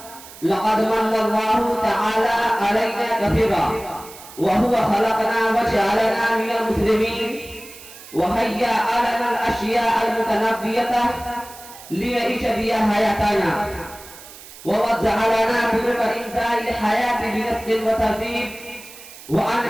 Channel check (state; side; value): noise; right; hiss, 17 dB below the sound